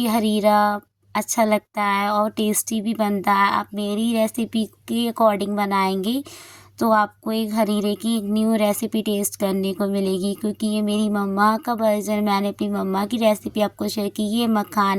हरीरा अच्छा लगता है और टेस्टी भी बनता है। आप मेरी रेसिपी के अकॉर्डिंग बनाएंगे तो आपको एक हरीरे की एक न्यू रेसिपी टेस्ट करने को मिलेगी, क्योंकि ये मेरी मम्मा का वर्जन, मैंने अपनी मम्मा की रेसिपी आपको शेयर की। ये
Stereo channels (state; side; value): identical; both; correlation 1.00